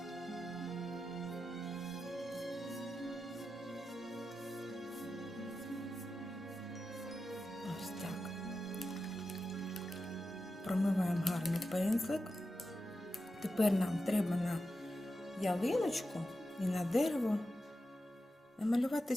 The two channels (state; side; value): normal; both; correlation 0.91